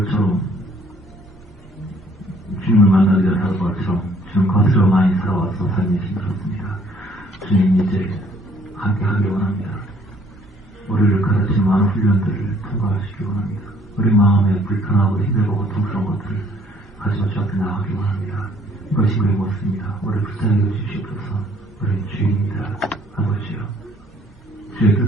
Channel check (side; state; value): both; normal; correlation 0.61